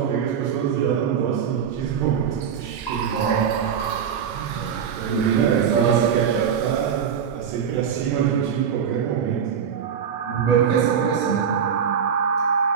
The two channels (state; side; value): quieter; left; 7.7 dB